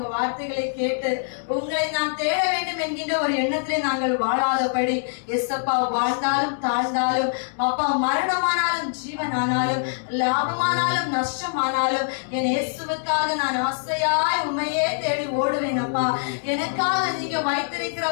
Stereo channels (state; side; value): silent; right; digital silence